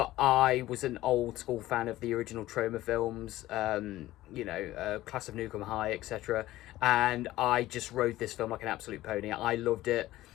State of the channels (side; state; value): right; quieter; 16.0 dB